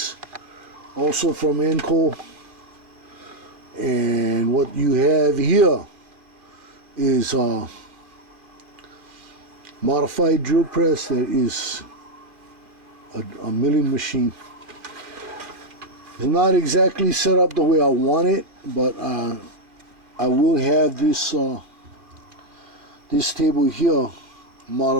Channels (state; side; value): late; left; 2.4 ms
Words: also from Enco. And what you have here is a modified drill press that is a milling machine. It's not exactly set up the way I want it, but I will have this this table here